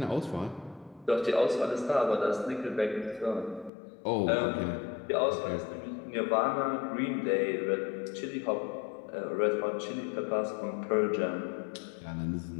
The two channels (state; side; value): drops out; right; at 3.7 s